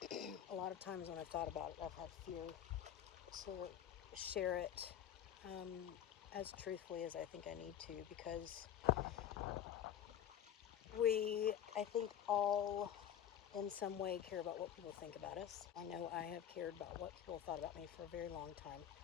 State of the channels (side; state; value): right; quieter; 10.1 dB